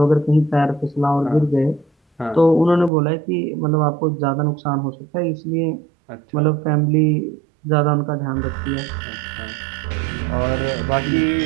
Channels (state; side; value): drops out; left; at 2.9 s